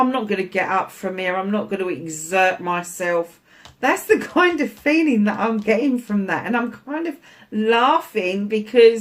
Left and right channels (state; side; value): identical; both; correlation 1.00